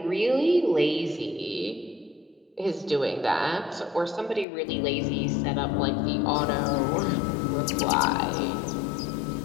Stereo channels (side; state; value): right; drops out; at 4.5 s